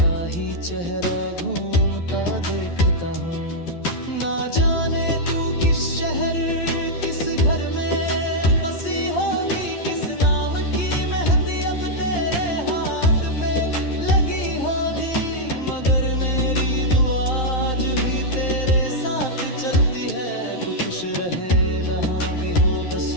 ही चेहरा घूमता देखता हूँ। ना जाने तू किस शहर किस घर में बसी होगी, किस नाम की मेहंदी अब तेरे हाथ पे लगी होगी। मगर मेरी दुआ आज भी तेरे साथ चलती है, तू खुश रहे जहाँ भी हो, बस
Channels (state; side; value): late; right; 12 ms